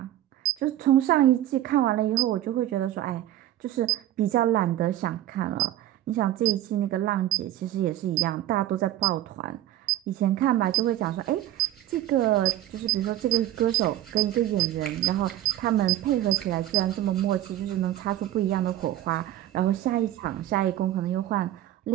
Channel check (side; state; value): left; quieter; 13.4 dB